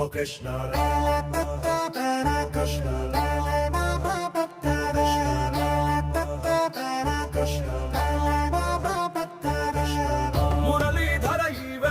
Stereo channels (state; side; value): identical; both; correlation 1.00